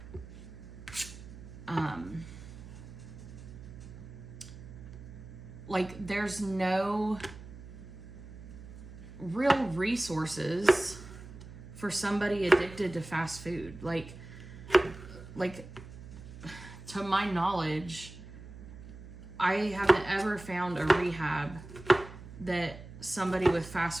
like, there's no real resources for somebody addicted to fast food. Like to my knowledge, I haven't ever found a rehab that somebody with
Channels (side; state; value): right; noise; hum, 14 dB below the sound